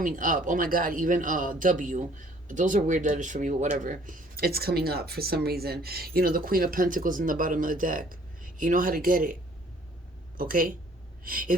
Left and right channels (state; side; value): normal; both; correlation 0.58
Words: up. Oh my God, even W. Those are weird letters for me, but whatever. It's coming up for some reason. You know, the Queen of Pentacles in the bottom of the deck. You know how to get it. Okay?